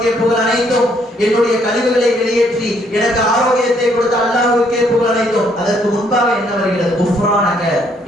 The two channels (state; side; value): normal; both; correlation 0.68